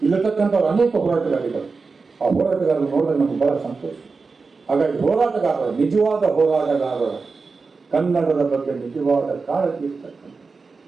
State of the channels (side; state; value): left; quieter; 4.4 dB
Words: ಇಲ್ಲತಕ್ಕಂಥವ್ರು ಅನೇಕ ಹೋರಾಟಗಾರಿಗಳು, ಆ ಹೋರಾಟಗಾರರು ನೋಡಿದಾಗ ನಮ್ಗೆ ಬಹಳ ಸಂತೋಷ. ಹಾಗಾಗಿ ಹೋರಾಟಗಾರರು, ನಿಜವಾದ ಹೋರಾಟಗಾರರು, ಕನ್ನಡದ ಬಗ್ಗೆ ನಿಜವಾದ ಕಾಳಜಿ ಇರ್ತಕ್ಕಂಥ,